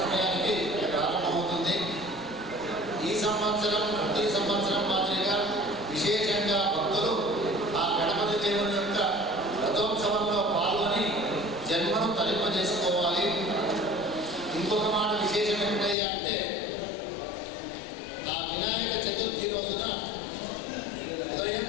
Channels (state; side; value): drops out; right; at 16.0 s